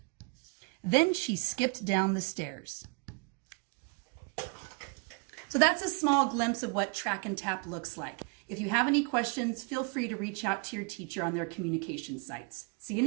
Then she skipped down the stairs. So that's a small glimpse of what Track and Tap looks like. If you have any questions, feel free to reach out to your teacher on their communication sites. See you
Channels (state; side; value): quieter; left; 33.0 dB